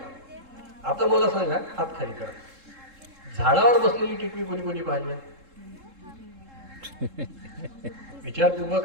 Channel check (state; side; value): late; left; 3.7 ms